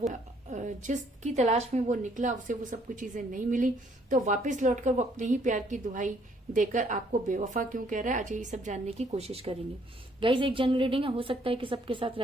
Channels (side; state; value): both; normal; correlation 0.66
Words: जिसकी तलाश में वो निकला उसे वो सब कुछ चीजें नहीं मिली, तो वापस लौटकर वो अपने ही प्यार की दुहाई देकर आपको बेवफा क्यों कह रहा है। आज ये सब जानने की कोशिश करेंगे। गाइस, एक जनरल रीडिंग है, हो सकता है कि सबके साथ